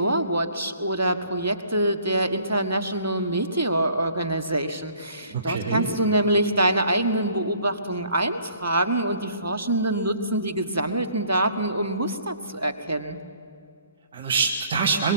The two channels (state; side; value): inverted; both; correlation -0.58